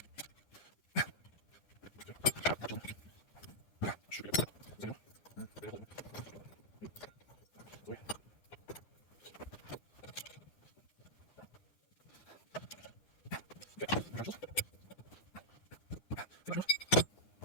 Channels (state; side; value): late; right; 9.8 ms